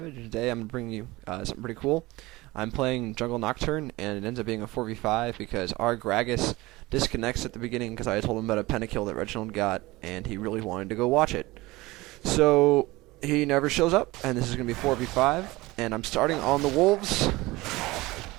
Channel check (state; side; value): quieter; left; 20.5 dB